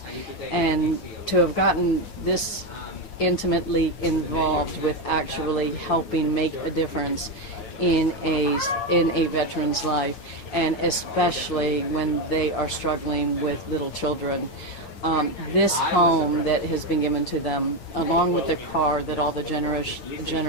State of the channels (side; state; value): right; late; 7.8 ms